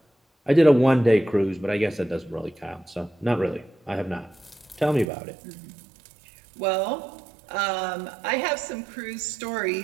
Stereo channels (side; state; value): left; drops out; at 5.1 s